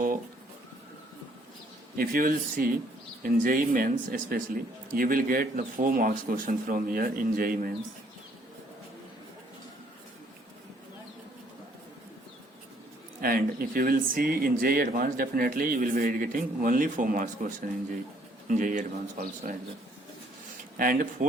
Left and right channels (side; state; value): both; normal; correlation 0.64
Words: if you will see in JEE Mains especially, you will get the 4 marks question from here in JEE Mains. And if you will see in JEE Advanced, definitely you will be getting only 4 marks question in JEE Advanced also as well. And